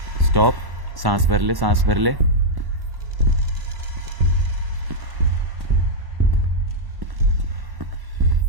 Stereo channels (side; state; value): left; late; 1.1 ms